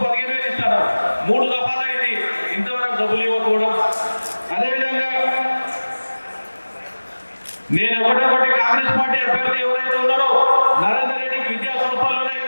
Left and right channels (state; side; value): inverted; both; correlation -1.00